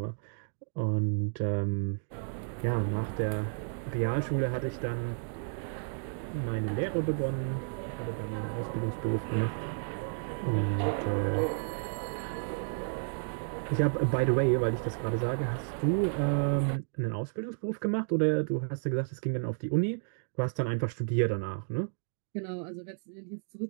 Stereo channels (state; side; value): silent; left; digital silence